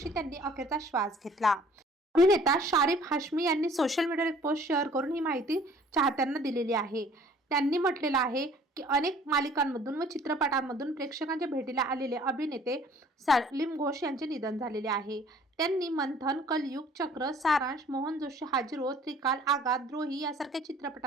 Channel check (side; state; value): both; normal; correlation 0.55